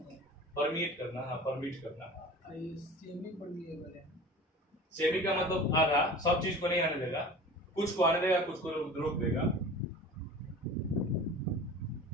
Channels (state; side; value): normal; both; correlation 0.39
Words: परमिट करना। हाँ, परमिट करना। सेमी परमिएबल है। सेमी का मतलब आधा, सब चीज को नहीं आने देगा, कुछ को आने देगा, कुछ को रोक देगा।